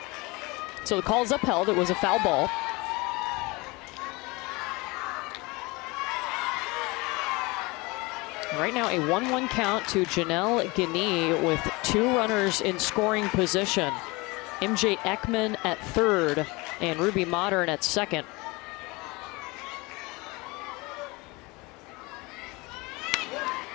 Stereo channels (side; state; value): right; quieter; 24.7 dB